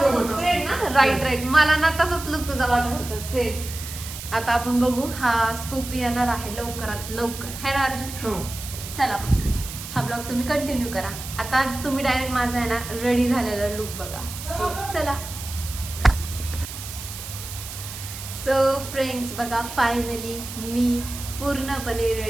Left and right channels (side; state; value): right; noise; hiss, 10 dB below the sound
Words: फ्रेंड ना, राईट. मला ना तसंच लुक तुझा वाटत होता सेम. आता आपण बघू, हा स्कूप येणार आहे लवकरात लवकर, है ना अर्जुन? चला हा ब्लॉग तुम्ही कंटिन्यू करा. आता तुम्ही डायरेक्ट माझा आहे ना रेडी झालेला लुक बघा. चला. सो फ्रेंड्स बघा, फायनली मी पूर्णपणे